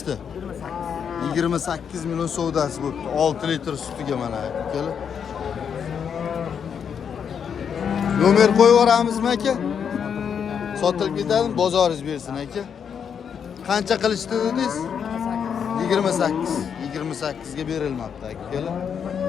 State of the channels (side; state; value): right; quieter; 7.4 dB